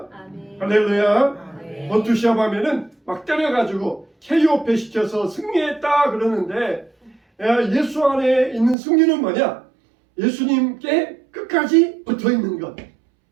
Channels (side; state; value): left; drops out; at 8.8 s